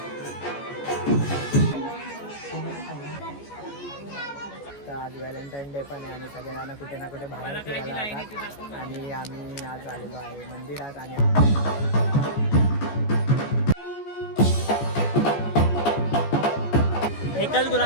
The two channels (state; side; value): late; right; 14 ms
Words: तर आज व्हॅलेंटाईन डे पण आहे आणि सगळ्यांना कुठे ना कुठे बाहेर फिरायला जातात. आणि आम्ही आज आलेलो आहे मंदिरात. आणि एकच